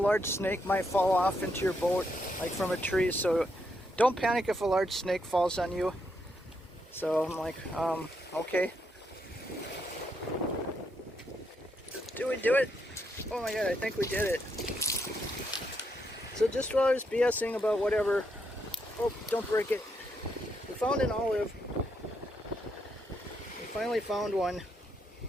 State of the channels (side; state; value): both; normal; correlation 0.78